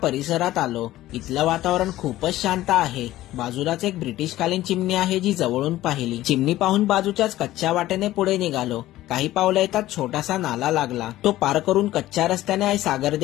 आलो. इथलं वातावरण खूपच शांत आहे. बाजूलाच एक ब्रिटिशकालीन चिमणी आहे जी जवळून पाहिली. चिमणी पाहून बाजूच्याच कच्च्या वाटेने पुढे निघालो. काही पावलं येतात छोटासा नाला लागला. तो पार करून कच्च्या रस्त्याने आई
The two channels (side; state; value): right; quieter; 15.3 dB